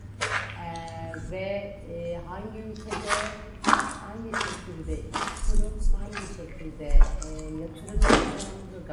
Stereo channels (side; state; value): both; identical; correlation 1.00